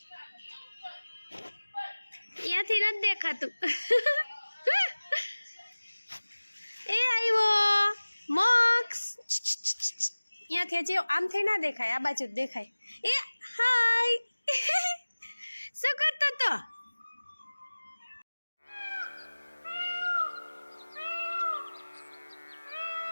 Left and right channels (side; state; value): both; inverted; correlation -1.00